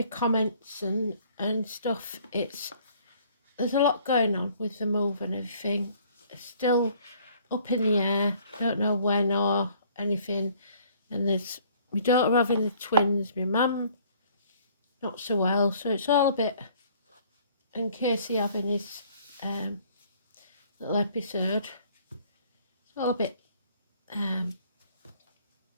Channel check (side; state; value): both; inverted; correlation -0.58